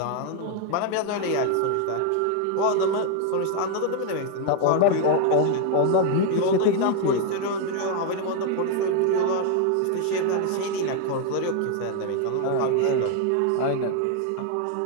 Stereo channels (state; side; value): different; both; correlation 0.01